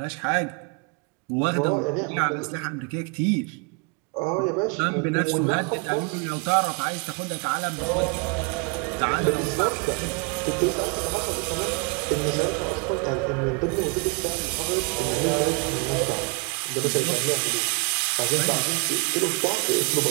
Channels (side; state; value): left; quieter; 32.1 dB